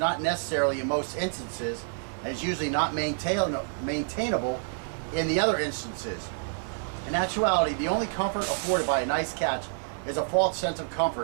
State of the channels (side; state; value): left; silent; digital silence